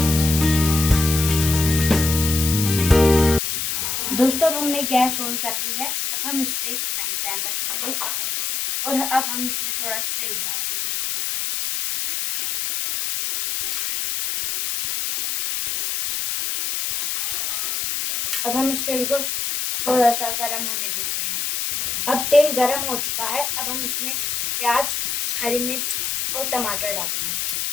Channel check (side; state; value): left; noise; hiss, 1 dB below the sound